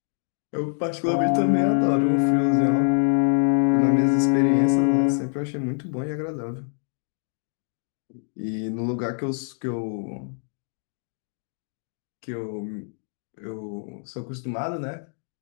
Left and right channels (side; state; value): right; silent; 62 dB below the other